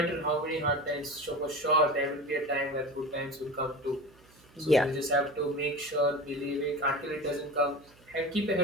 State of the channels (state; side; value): noise; right; hum, 27 dB below the sound